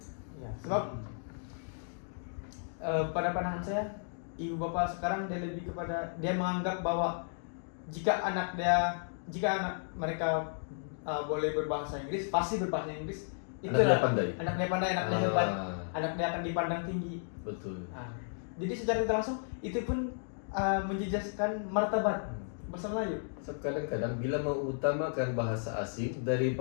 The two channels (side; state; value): right; silent; digital silence